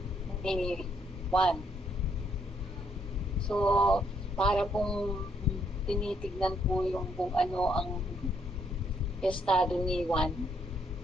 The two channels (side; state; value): both; normal; correlation 0.72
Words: ni Juan. So, para pong tinitignan po yung kung ano ang estado ni Juan